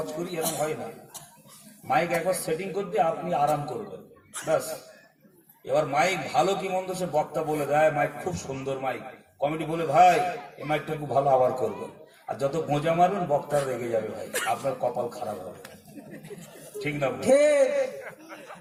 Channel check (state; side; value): identical; both; correlation 1.00